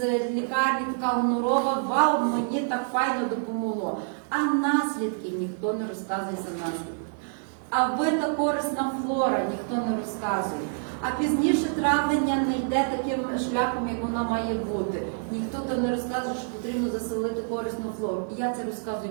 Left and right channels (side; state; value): left; silent; digital silence